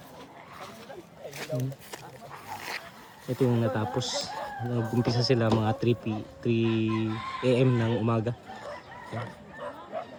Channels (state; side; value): identical; both; correlation 1.00